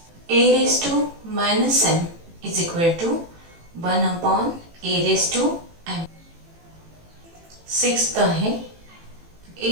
a⁻m is equal to 1/a⁴m. Sixth आहे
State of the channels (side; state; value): left; late; 18 ms